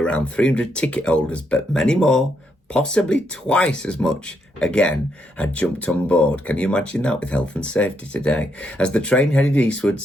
300 ticket holders, but many more, possibly twice as much, again, had jumped on board. Can you imagine that with health and safety today? As the train headed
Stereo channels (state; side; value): normal; both; correlation 0.78